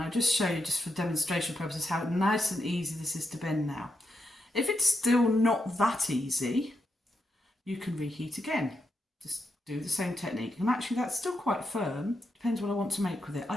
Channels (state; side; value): normal; both; correlation 0.84